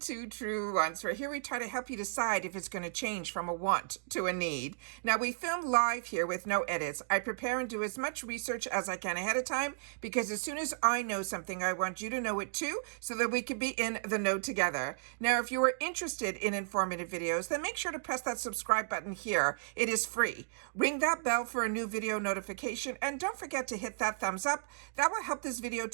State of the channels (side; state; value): left; silent; digital silence